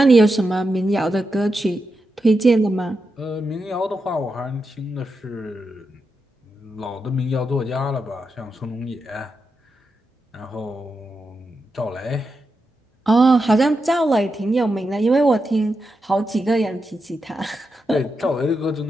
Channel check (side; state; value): both; normal; correlation 0.87